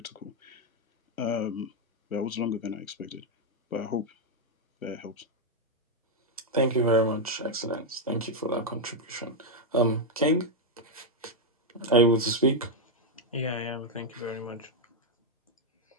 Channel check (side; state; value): both; normal; correlation 0.01